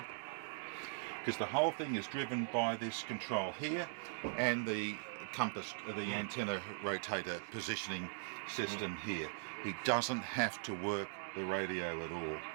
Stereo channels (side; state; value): left; silent; digital silence